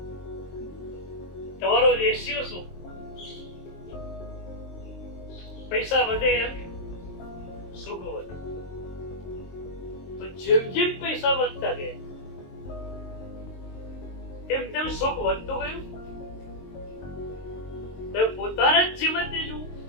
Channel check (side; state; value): right; late; 22 ms